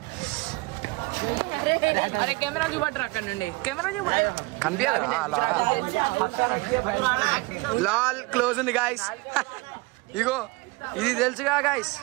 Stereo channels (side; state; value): left; quieter; 24.7 dB